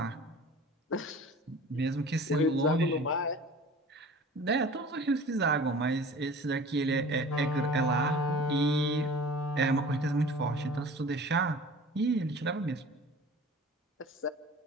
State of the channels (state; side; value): normal; both; correlation 0.42